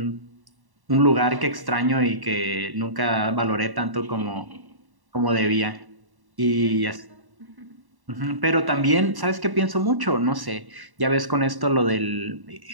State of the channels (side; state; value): left; late; 1.1 ms